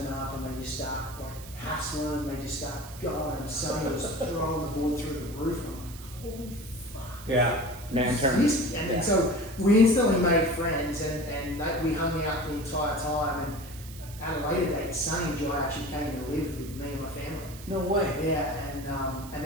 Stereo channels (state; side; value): noise; right; hiss, 17 dB below the sound